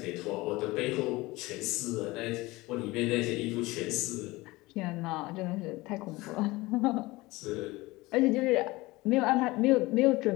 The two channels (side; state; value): right; quieter; 21.0 dB